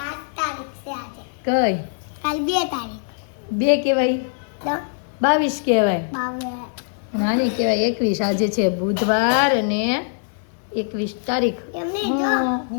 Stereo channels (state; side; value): silent; right; 57 dB below the other